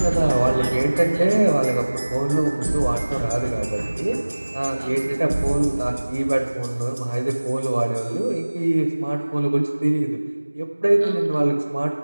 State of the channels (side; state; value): both; inverted; correlation -1.00